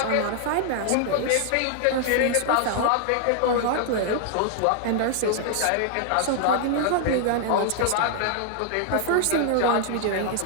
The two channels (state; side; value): different; both; correlation -0.01